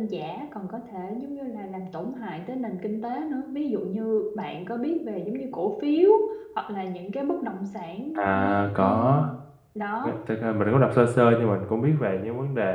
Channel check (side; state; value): both; identical; correlation 1.00